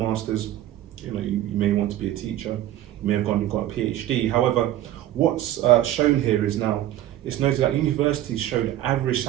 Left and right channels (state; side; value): quieter; left; 13.4 dB